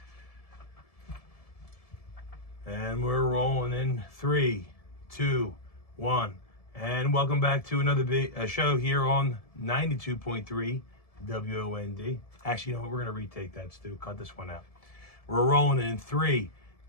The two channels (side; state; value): right; late; 1.7 ms